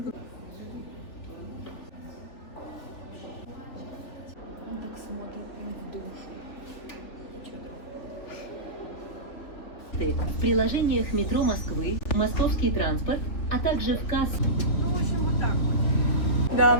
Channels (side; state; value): right; late; 3.4 ms